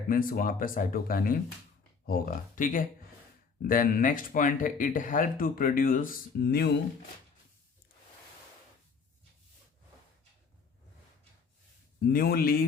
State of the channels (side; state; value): right; quieter; 5.3 dB